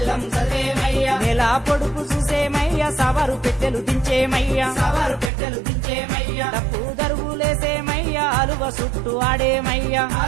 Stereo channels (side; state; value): left; drops out; at 5.3 s